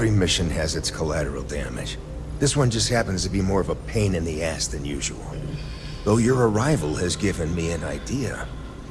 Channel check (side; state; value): both; identical; correlation 1.00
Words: mission has its collateral damage. This one just happens to be more of a pain in the ass than usual. Though your arrival has given me an idea